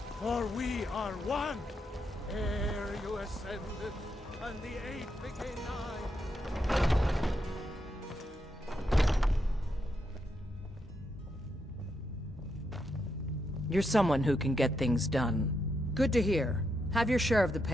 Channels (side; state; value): both; normal; correlation 0.81